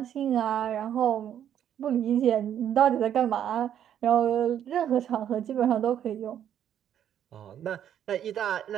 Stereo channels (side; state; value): left; quieter; 10.0 dB